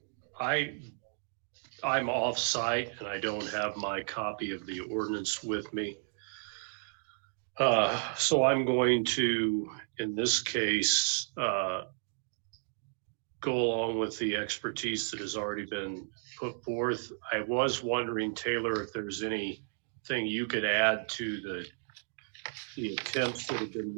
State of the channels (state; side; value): silent; left; digital silence